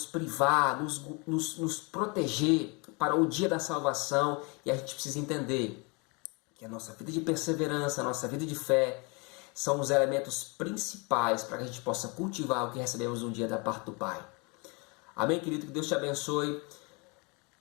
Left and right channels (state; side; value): quieter; right; 30.5 dB